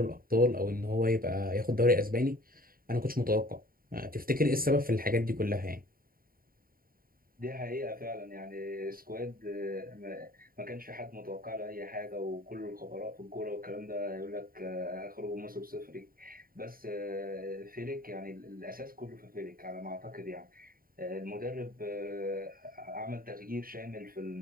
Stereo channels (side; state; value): left; late; 0.42 ms